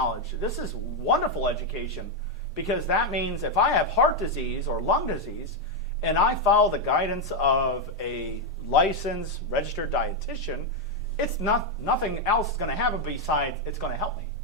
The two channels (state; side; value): normal; both; correlation 0.02